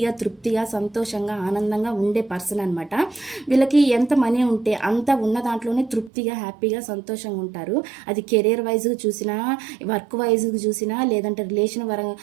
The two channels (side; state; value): left; drops out; at 6.1 s